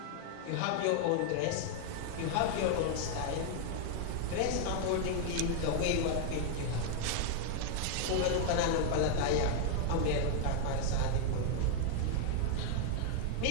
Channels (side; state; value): both; different; correlation 0.00